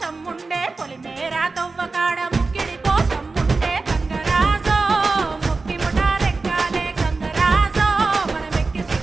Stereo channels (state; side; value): quieter; left; 3.8 dB